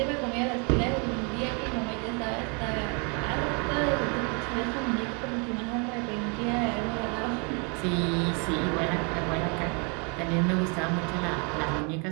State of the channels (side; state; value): left; quieter; 34.7 dB